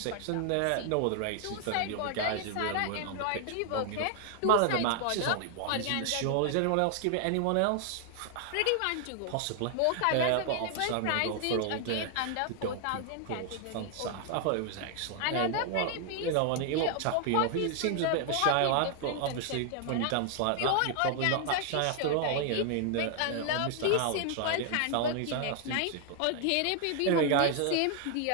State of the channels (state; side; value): different; both; correlation 0.00